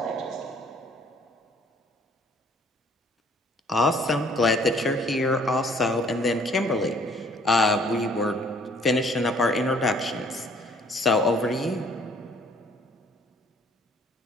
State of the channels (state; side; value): normal; both; correlation 0.59